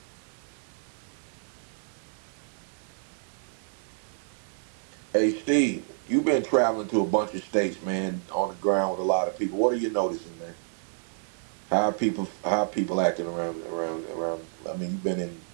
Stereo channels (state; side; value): silent; left; digital silence